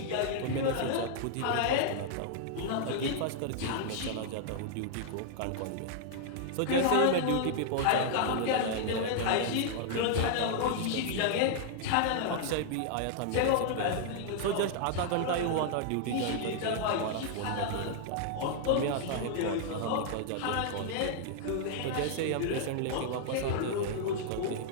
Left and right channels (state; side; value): different; both; correlation -0.01